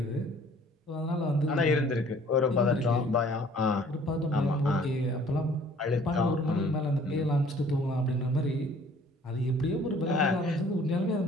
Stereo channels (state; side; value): normal; both; correlation 0.55